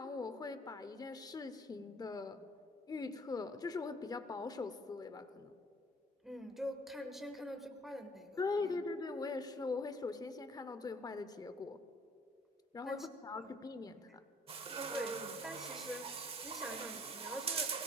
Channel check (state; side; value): normal; both; correlation 0.57